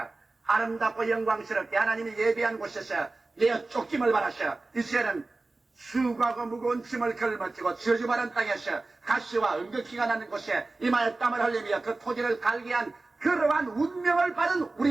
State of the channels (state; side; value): quieter; left; 3.3 dB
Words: 아름답고 영광스럽게 하나님이 예비한 곳에서 내어 쫓김을 받았어. 이제는 수고하고 무거운 짐을 걸머쥐고 저주받은 땅에서 가시와 은극히가 나는 곳에 이마에 땀을 흘리며 그 토지를 갈게 한 그러한 운명을 받은